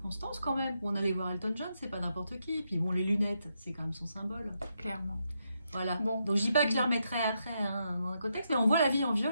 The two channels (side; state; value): both; inverted; correlation -0.81